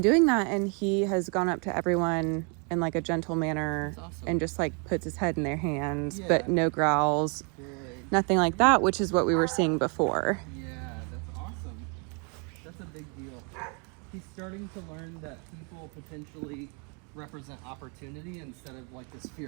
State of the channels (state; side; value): quieter; left; 35.6 dB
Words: doing that, and he has gone up to everyone in like a gentle manner and just like puts his head in their hands, but no growls, nothing like that, which is what we were seeing before. Yeah, that's awesome. That's a big deal. He's starting to learn that people potentially represent opportunity instead of like this